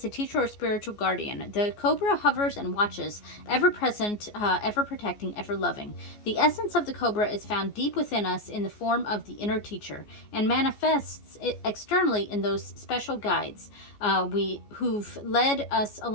a teacher or spiritual guardian. The Cobra hovers and watches, ever present, ever protecting, ever loving. The essence of the Cobra is found deep within us in the form of the inner teacher and manifests externally in those special guides who've led us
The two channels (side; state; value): right; late; 14 ms